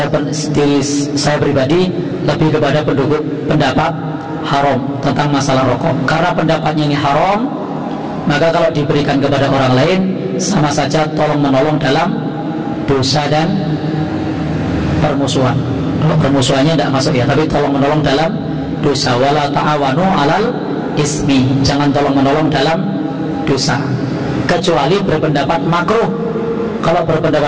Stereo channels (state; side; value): identical; both; correlation 1.00